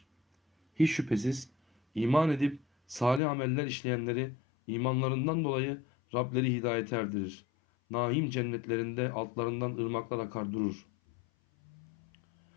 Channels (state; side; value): drops out; right; at 3.2 s